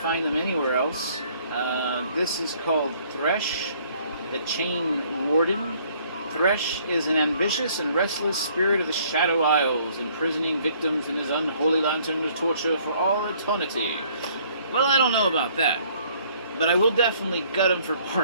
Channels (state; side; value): inverted; both; correlation -0.61